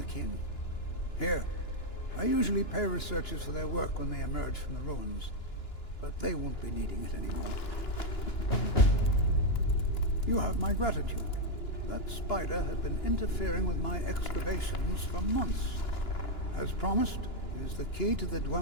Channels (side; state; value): right; late; 2.9 ms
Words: king. Here, I usually pay researchers for their work when they emerge from the ruins, but they won't be needing it anymore. You have my gratitude. That spider had been interfering with my excavations for months. As promised, here's the key to the